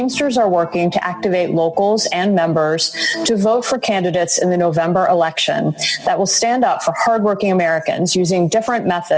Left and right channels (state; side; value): identical; both; correlation 1.00